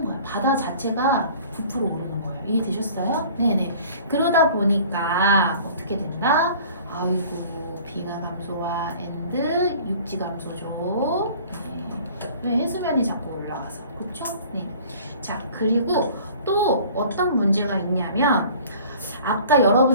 거야. 바다 자체가 부풀어 오르는 거예요. 이해되셨어요? 네네. 그러다 보니까 어떻게 된다? 아이고 빙하 감소와 엔드 육지 감소죠. 네. 왜 해수면이 자꾸 올라가서 그렇죠? 네. 자 그리고 또 어떤 문제가 있냐면 아까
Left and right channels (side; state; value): both; inverted; correlation -0.48